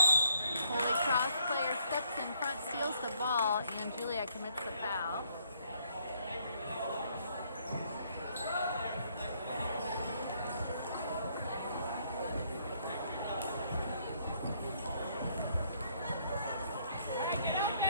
Holy Cross player steps in front, steals the ball, and Julia commits the foul.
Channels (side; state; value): both; inverted; correlation -0.68